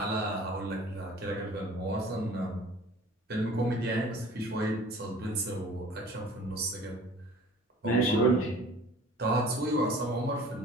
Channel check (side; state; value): both; normal; correlation 0.47